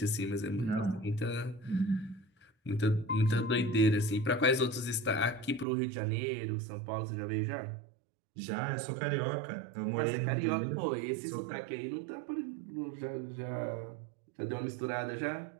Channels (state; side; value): drops out; left; at 5.7 s